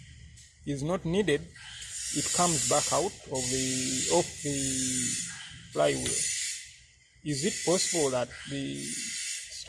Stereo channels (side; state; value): both; identical; correlation 1.00